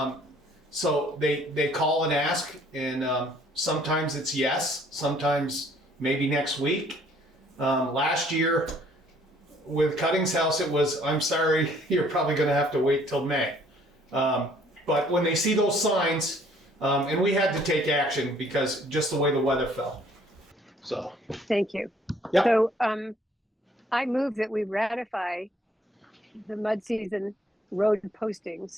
so they call and ask, and sometimes it's yes, sometimes maybe next week. Last year with Cutting's house, it was, I'm sorry, you're probably going to have to wait till May. But when they see those signs, and we had to take action because just the way the weather fell. So. Thank you. Yep. So I move that we ratify the mud season road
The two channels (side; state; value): both; normal; correlation 0.60